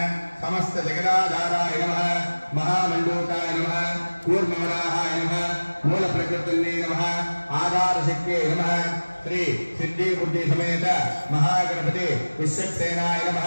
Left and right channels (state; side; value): inverted; both; correlation -1.00